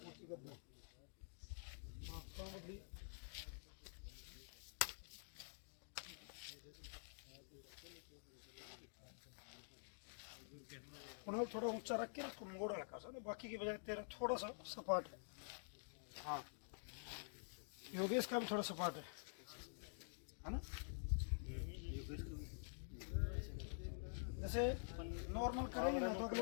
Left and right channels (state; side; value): silent; right; digital silence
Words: थोड़ा ऊंचा रख के इसको मोड़ हल्का सा ना बाकी की बजाय तेरा थोड़ा सा सपाट है। हाँ योगेश का भी थोड़ा सपाट है ना। जैसे नॉर्मल करेंगे ना तो